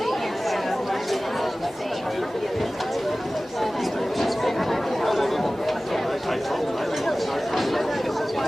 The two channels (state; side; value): normal; both; correlation 0.97